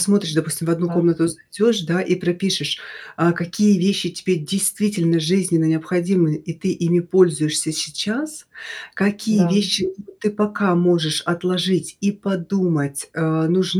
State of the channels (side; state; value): both; identical; correlation 1.00